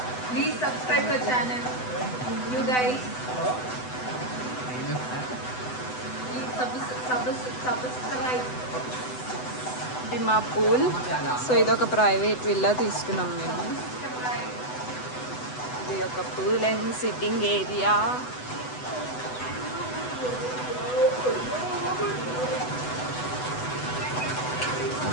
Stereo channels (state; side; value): late; right; 8.0 ms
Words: please subscribe the channel you guys. Subscribe. ఇది మా పూల్. సో ఇది ఒక ప్రైవేట్ విల్లా తీసుకున్నాం మేము. ఇది ఒక pool and sitting area.